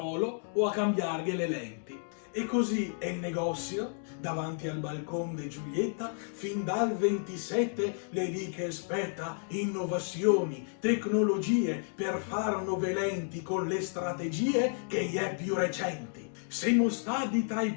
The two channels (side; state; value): right; silent; 57 dB below the other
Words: o a cambiargli le lenti. E così è il negozio, davanti al balcone di Giulietta, fin dal 27 le lì che aspetta innovazioni, tecnologie per far nuove lenti con le strategie che gli è più recenti. Siamo stati tra i